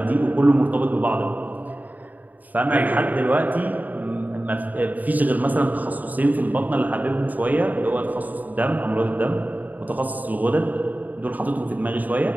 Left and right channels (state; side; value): late; left; 0.080 ms